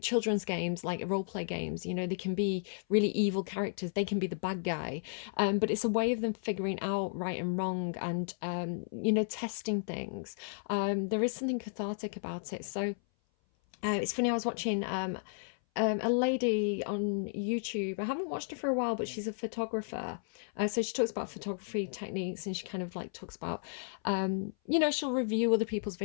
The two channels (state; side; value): silent; right; 55 dB below the other